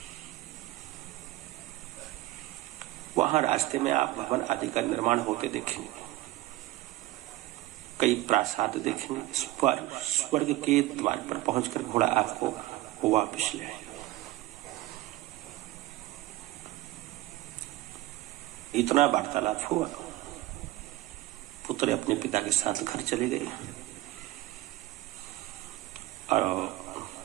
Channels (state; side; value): quieter; left; 17.6 dB